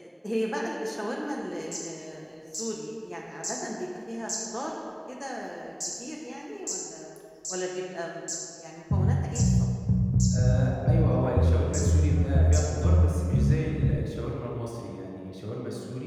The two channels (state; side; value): identical; both; correlation 1.00